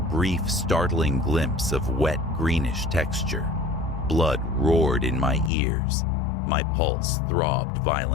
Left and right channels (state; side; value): drops out; right; at 5.5 s